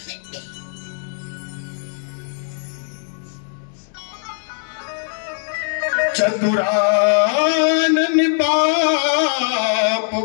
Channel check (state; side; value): silent; right; 65 dB below the other